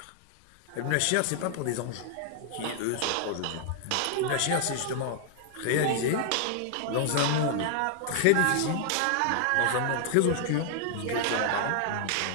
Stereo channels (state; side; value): different; both; correlation 0.00